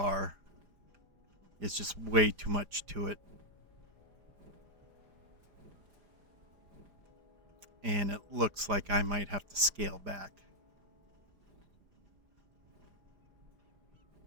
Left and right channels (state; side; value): late; left; 4.9 ms